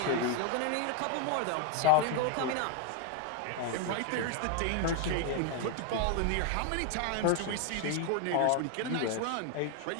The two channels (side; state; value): both; different; correlation 0.01